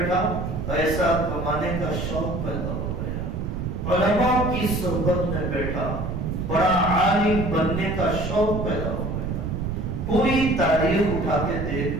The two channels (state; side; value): noise; right; rumble, 4 dB below the sound